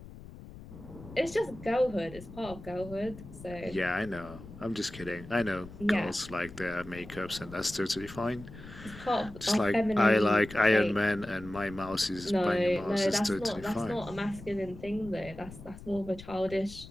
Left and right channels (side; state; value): left; noise; rumble, 16 dB below the sound